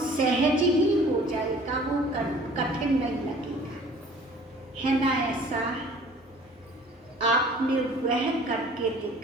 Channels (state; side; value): normal; both; correlation 0.50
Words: सहज ही हो जाएगा, वो कठिन नहीं लगेगा, है ना? ऐसा आपने वह करके